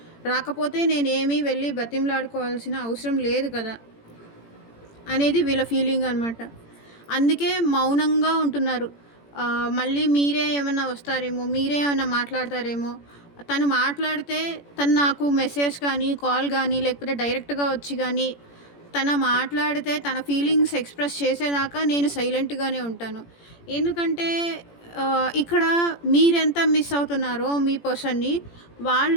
రాకపోతే నేనేమి వెళ్ళి బతిమలాడుకోవాల్సిన అవసరం లేదు కదా! అనేది వీళ్ళ ఫీలింగ్ అనమాట. అందుకే మౌనంగా ఉంటున్నారు. మళ్ళీ మీరే ఏమన్నా వస్తారేమో, మీరే ఏమన్నా మాట్లాడతారేమో. తను మాట్లాడితే తను నాకు మెసేజ్ కానీ, కాల్ గానీ, లేకపోతే డైరెక్ట్‌గా వచ్చి గానీ, మాట్లాడితే తన ఫీలింగ్స్ ఎక్స్‌ప్రెస్ చేసేదాకా నేను సైలెంట్‌గానే ఉంటాను. ఎందుకంటే ఇక్కడ మీరెంత మిస్ అవుతున్నారో మీ పర్సన్‌ని,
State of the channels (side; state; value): right; late; 17 ms